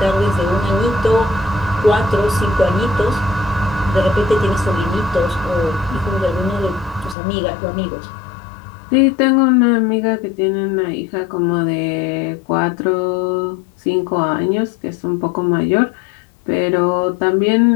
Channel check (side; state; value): right; drops out; at 7.2 s